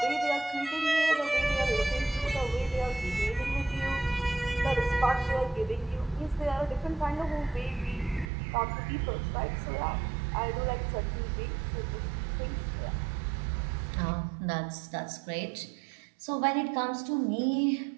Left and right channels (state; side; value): drops out; left; at 8.3 s